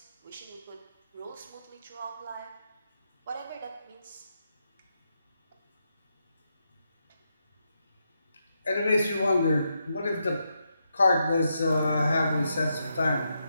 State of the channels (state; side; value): inverted; both; correlation -0.83